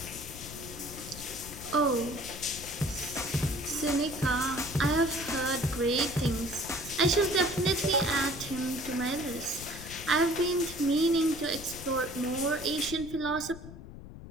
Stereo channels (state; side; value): noise; left; rumble, 13 dB below the sound